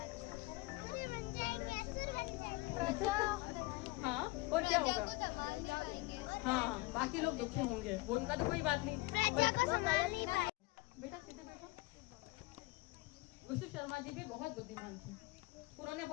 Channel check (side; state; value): right; quieter; 21.5 dB